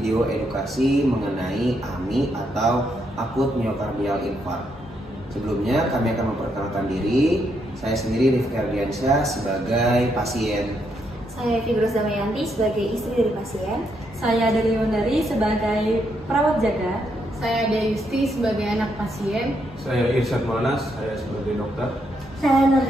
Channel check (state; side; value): normal; both; correlation 0.77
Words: edukasi mengenai AMI atau akut miokardial infark. Sebelumnya kami akan memperkenalkan diri. Saya sendiri Rifki Ardiansyah sebagai pasien. Saya Figros Damayanti sebagai istri dari pasien. Saya dari Wondari sebagai perawat jaga. Saya Dayusti sebagai anak pasien. Saya Irsyad Monas, saya sebagai dokter. Saya Nur